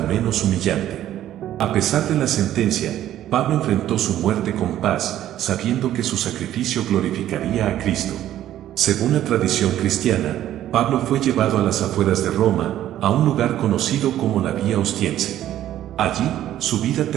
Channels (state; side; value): quieter; left; 12.4 dB